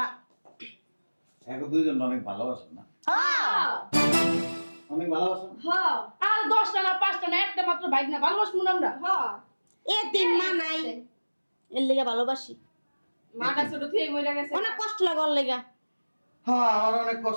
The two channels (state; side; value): inverted; both; correlation -1.00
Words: এখন দুইজন অনেক ভালোবাসেন না? হ্যাঁ অনেক ভালোবাসেন? হ্যাঁ আর 10টা না 5টা না একটা মাত্র বাইক না ভালোবাসবো না আমরা হ্যাঁ এ তিন মা নাই এর লেগা ভালোবাসি। মাটা ছোট থেকে মরে গেছে অনেক কষ্ট লাগে ওর লেগা। হ্যাঁ আমার অনেক